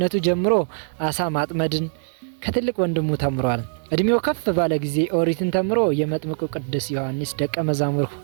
ጀምሮ አሳ ማጥመድን ከትልቅ ወንድሙ ተምሯል። እድሜው ከፍ ባለ ጊዜ ኦሪትን ተምሮ የመጥምቁ ቅዱስ ዮሐንስ ደቀ መዛሙር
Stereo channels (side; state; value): left; silent; digital silence